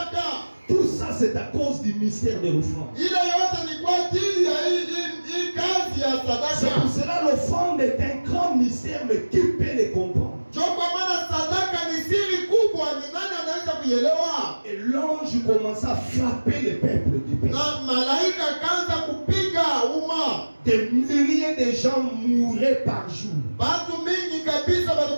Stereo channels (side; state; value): both; inverted; correlation -1.00